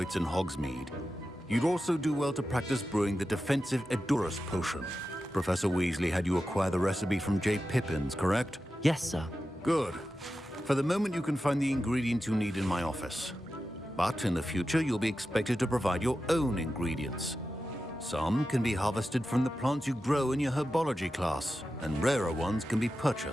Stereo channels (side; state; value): both; normal; correlation 0.92